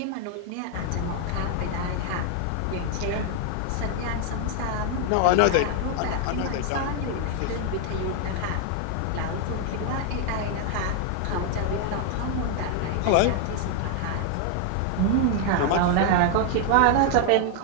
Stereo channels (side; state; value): both; different; correlation 0.00